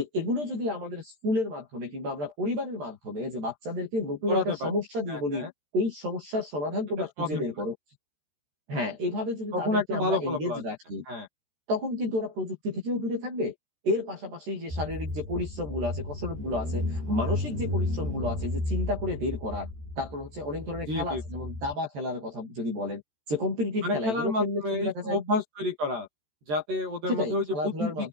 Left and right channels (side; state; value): left; late; 13 ms